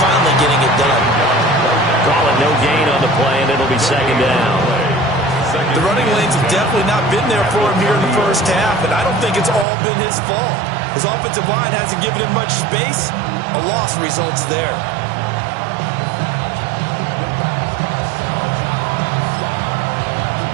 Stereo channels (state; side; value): drops out; left; at 9.7 s